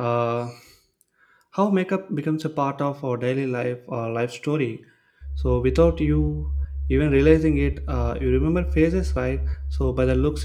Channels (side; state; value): both; identical; correlation 1.00